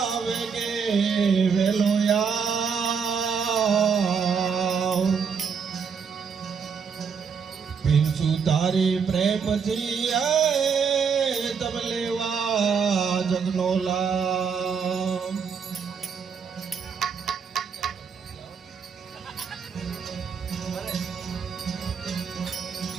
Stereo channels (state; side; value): quieter; left; 6.2 dB